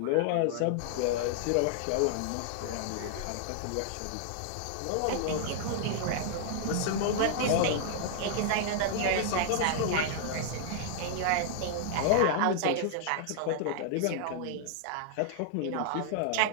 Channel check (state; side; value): different; both; correlation -0.01